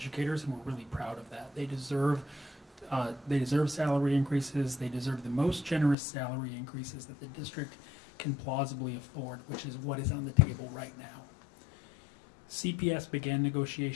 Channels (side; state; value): right; drops out; at 6.0 s